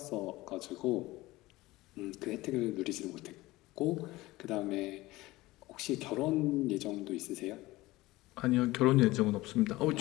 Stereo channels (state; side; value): quieter; right; 19.1 dB